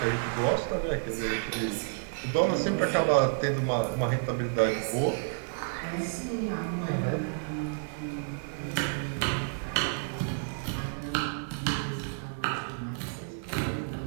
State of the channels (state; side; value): silent; left; digital silence